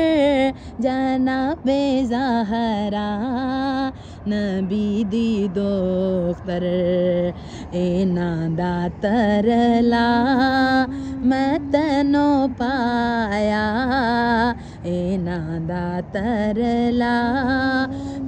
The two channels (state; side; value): identical; both; correlation 1.00